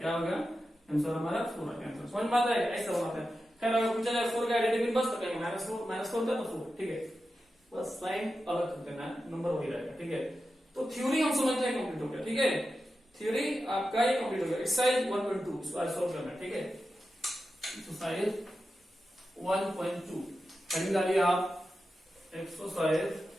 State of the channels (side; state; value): both; normal; correlation 0.91